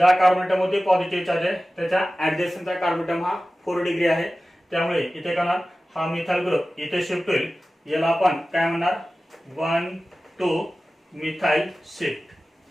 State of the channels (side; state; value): both; normal; correlation 0.96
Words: कार्बन मध्ये पॉझिटिव्ह चार्ज आहे त्याच्या ऍडजस्टचा कार्बन हा 4 डिग्री आहे, त्यामुळे इथे काय होणार, हा मिथाइल ग्रुप इथे शिफ्ट होईल. याला आपण काय म्हणणार, 1 to methyl shift,